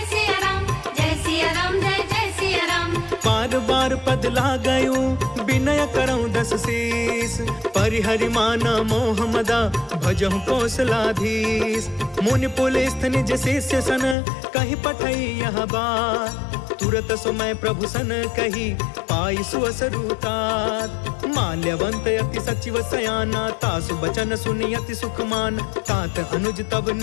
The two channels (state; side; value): drops out; right; at 14.2 s